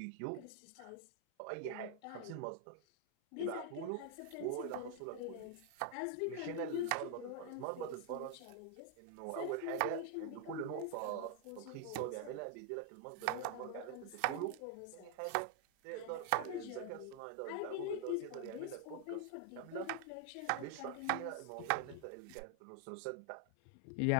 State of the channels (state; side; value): different; both; correlation 0.00